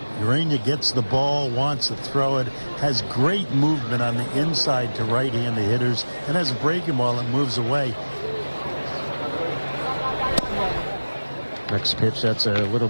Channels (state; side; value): inverted; both; correlation -1.00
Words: Urania gets the ball, wants to throw it, has great movement on the inside to right-handed hitters, and has a breaking ball that moves away. Next pitch, that's a little